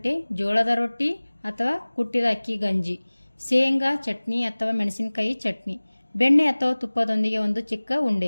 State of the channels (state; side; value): inverted; both; correlation -1.00